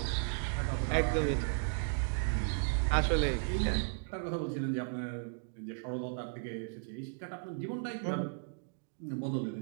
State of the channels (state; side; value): silent; left; digital silence